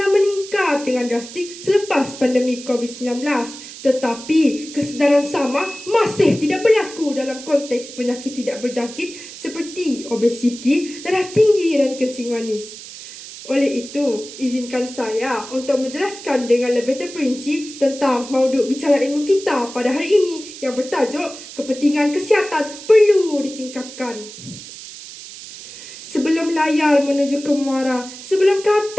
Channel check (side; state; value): right; noise; hiss, 14 dB below the sound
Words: meningkat dengan drastik selepas pandemik COVID-19. Tetapi kesedaran sama masih tidak berlaku dalam konteks penyakit tidak berjangkit seperti obesiti, darah tinggi dan kencing manis. Oleh itu, izinkan saya untuk menjelaskan dengan lebih terperinci tentang mauduk bicara ilmu kita pada hari ini yang bertajuk kepentingan kesihatan perlu ditingkatkan. Sebelum layar menuju ke muara, sebelum